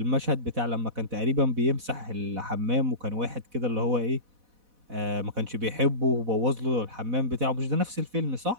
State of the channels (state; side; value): late; left; 4.1 ms